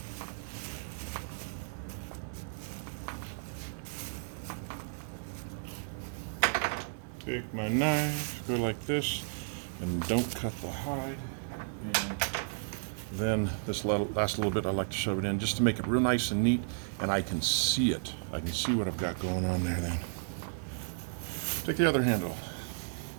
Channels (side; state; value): left; silent; 55 dB below the other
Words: Take my knife, go like this, and don't cut the hide. And then this last little bit, I like to shove it in just to make it real nice and neat, and I can see it. I can see what I've got going on there then. Take the other handle.